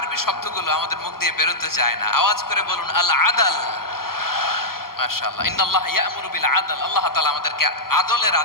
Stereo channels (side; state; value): right; late; 0.92 ms